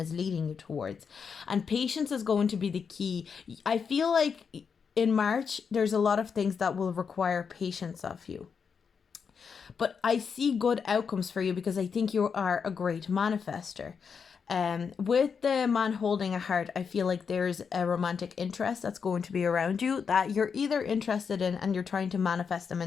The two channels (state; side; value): quieter; right; 6.2 dB